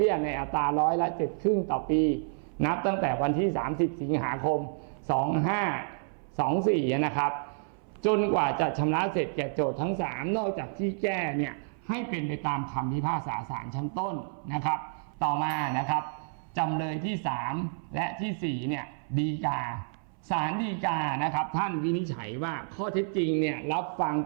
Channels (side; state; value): left; silent; 58 dB below the other